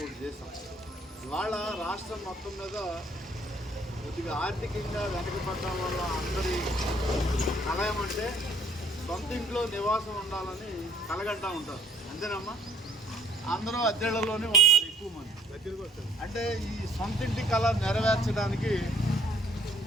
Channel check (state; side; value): normal; both; correlation 0.59